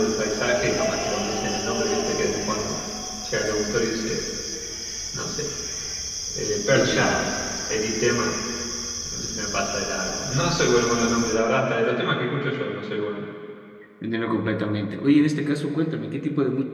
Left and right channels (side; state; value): both; identical; correlation 1.00